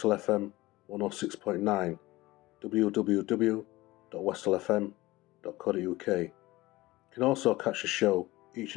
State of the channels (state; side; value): quieter; right; 19.3 dB